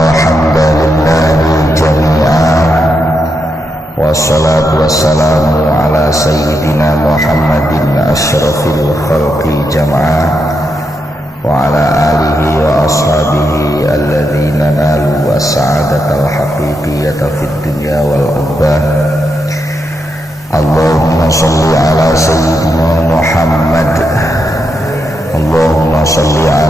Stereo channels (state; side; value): normal; both; correlation 0.83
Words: hamdalillahi jami'an wassalatu wassalamu ala sayyidina Muhammadin asyrafil khalqi jam'an wa ala alihi wa ashabihi alladhina nalu as-sa'adatal haqiqiyata fid dunya wal ukhbah. Allahumma salli ala sayyidina Muhammad, Allahumma salli